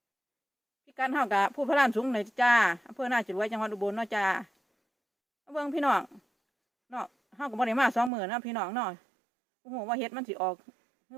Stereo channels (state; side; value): drops out; left; at 8.1 s